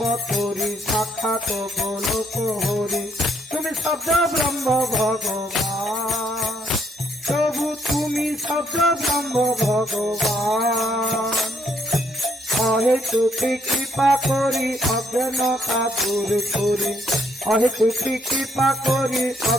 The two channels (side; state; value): both; normal; correlation 0.70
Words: সাক্ষাৎ গোলক হরি, তুমি শব্দ ব্রহ্ম ভগবান, প্রভু তুমি শব্দ ব্রহ্ম ভগবান। অহেতুকি কৃপা করি অজ্ঞানতা দূর করি, অহেতুকি কৃপা করি